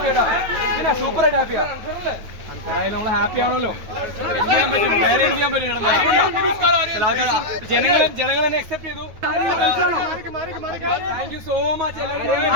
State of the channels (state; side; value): late; left; 9.2 ms